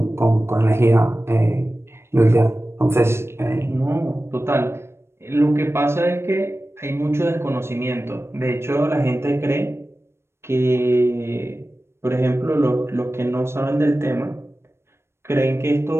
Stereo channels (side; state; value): left; late; 0.12 ms